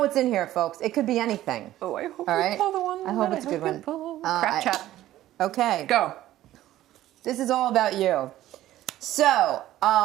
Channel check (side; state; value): left; quieter; 14.2 dB